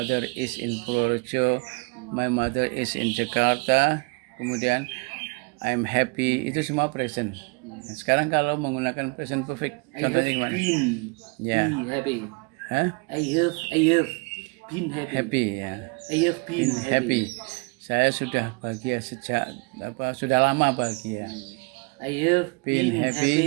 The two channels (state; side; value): quieter; left; 31.1 dB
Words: is in Purworejo, my mother is in Jakarta, kemudian I'm happy, itu semua present. Nah, sekarang kalau menggunakan present perfect, contohnya gimana? Ya. Happy. Hah? I have been happy. Happy, ya. I have been happy. Saya sudah bahagia sejak sudah lama bahagia. I have been